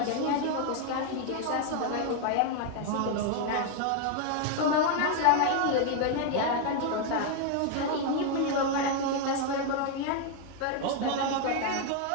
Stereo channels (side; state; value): both; different; correlation 0.01